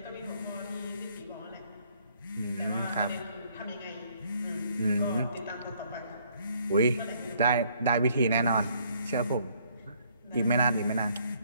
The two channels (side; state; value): both; inverted; correlation -0.65